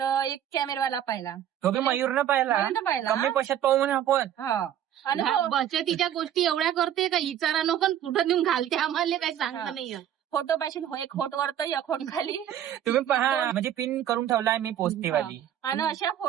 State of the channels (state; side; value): quieter; left; 10.6 dB